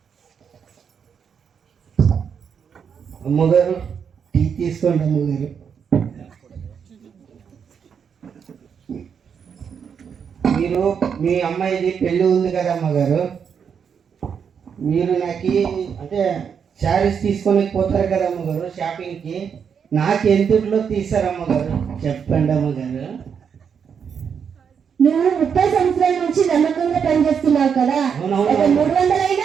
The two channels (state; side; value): quieter; left; 7.0 dB